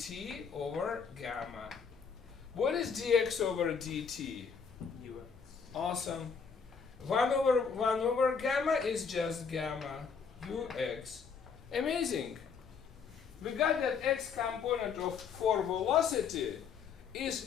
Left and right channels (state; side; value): quieter; right; 6.0 dB